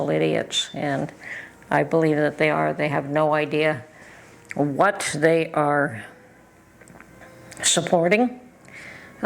idiots, and I believe that they are. They have no idea what they are supporting.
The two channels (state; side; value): identical; both; correlation 1.00